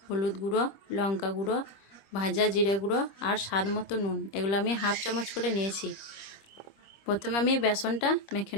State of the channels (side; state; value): right; late; 26 ms